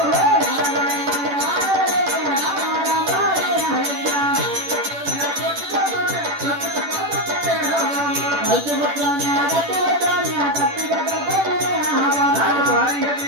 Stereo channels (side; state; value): left; late; 10 ms